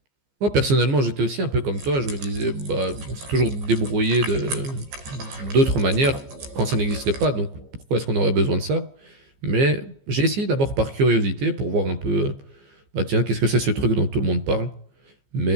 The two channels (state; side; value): late; left; 15 ms